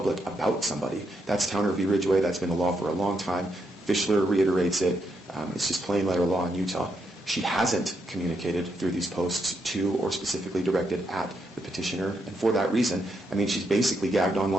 about somebody. That's Towner v. Ridgway. That's been the law for a long time. Fischler reiterates it. It's just plain letter law in Utah. She hasn't communicated through these posts to or specifically directed at the petitioner. And for that reason, I mean, she's basically gagged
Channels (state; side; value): normal; both; correlation 0.80